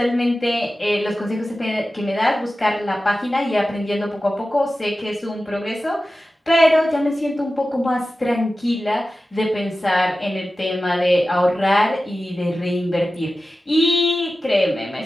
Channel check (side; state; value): both; normal; correlation 0.94